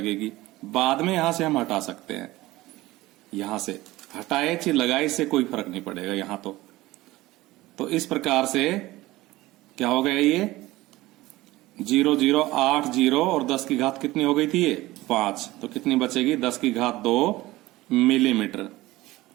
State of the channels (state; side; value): quieter; left; 18.3 dB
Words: बाद में यहां से हम हटा सकते हैं। यहां से हटाए चाहे लगाए, इससे कोई फर्क नहीं पड़ेगा यहां तो इस प्रकार से क्या हो गया? ये 0080 और 10⁻ कितनी हो गई थी? ये 5, तो कितनी बचेगी? 10⁻2 मिलीमीटर